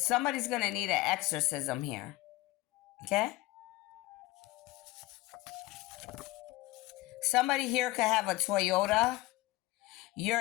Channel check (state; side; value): quieter; right; 18.6 dB